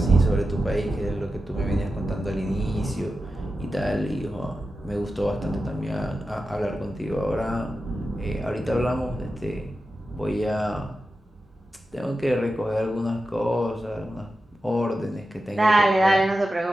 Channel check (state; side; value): normal; both; correlation 0.91